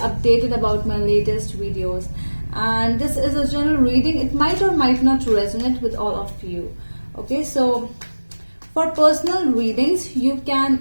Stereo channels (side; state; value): both; inverted; correlation -1.00